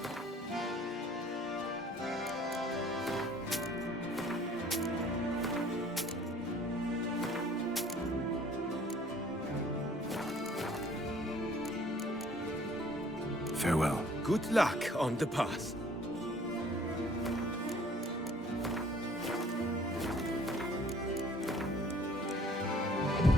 Farewell. Good luck on the path.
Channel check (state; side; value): normal; both; correlation 0.55